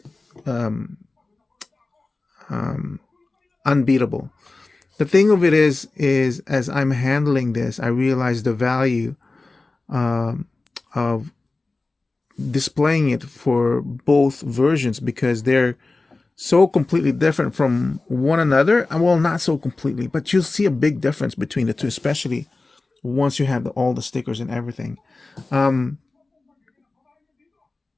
unbeatable. The thing of it is as I'm handling this, I realize the value of displaying it for both versions because they're so completely different from one another. Well, not so completely, but you'll see a big difference between the two, especially once you have all the stickers and everything. But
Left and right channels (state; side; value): quieter; right; 3.4 dB